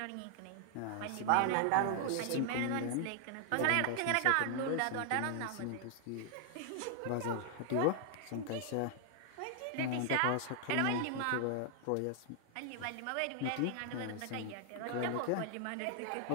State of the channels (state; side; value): different; both; correlation 0.00